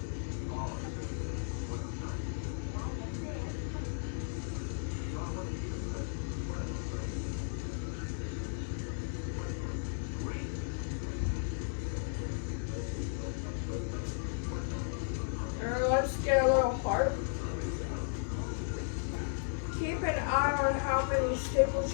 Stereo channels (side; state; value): right; silent; digital silence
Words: Let's get a little heart. Keep an eye on how many staples